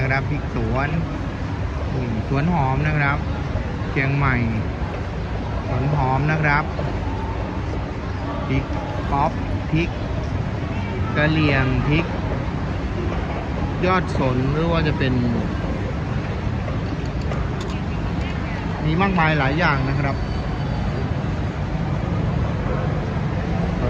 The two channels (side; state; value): both; identical; correlation 1.00